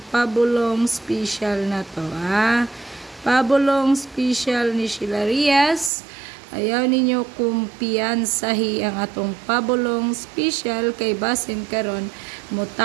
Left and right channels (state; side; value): drops out; left; at 5.9 s